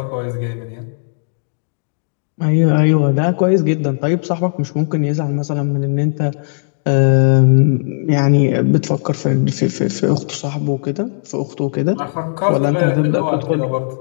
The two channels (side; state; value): right; silent; digital silence